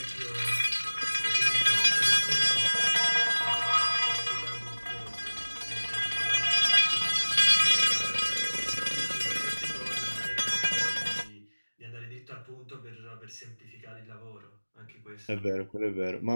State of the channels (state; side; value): inverted; both; correlation -1.00